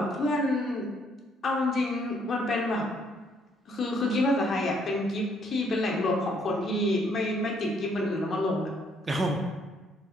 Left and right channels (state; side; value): normal; both; correlation 0.68